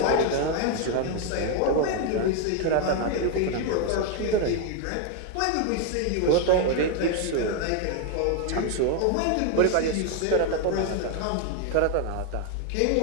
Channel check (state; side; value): different; both; correlation 0.00